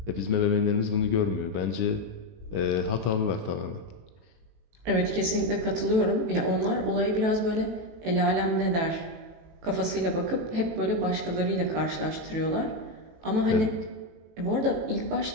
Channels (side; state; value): left; late; 18 ms